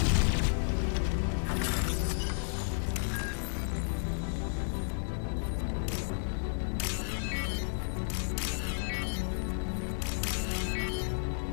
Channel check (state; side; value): silent; right; digital silence